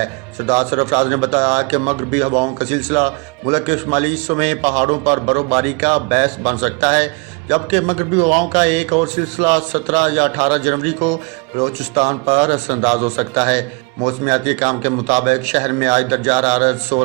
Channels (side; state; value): left; quieter; 30.5 dB